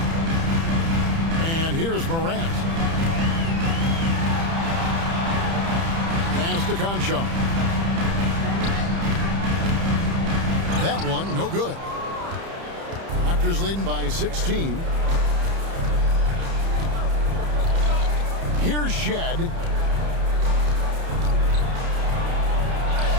And here's Morant. Pass to Conchar. That one, no good. Raptors leading by 16. Here's Shed.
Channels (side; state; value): left; late; 30 ms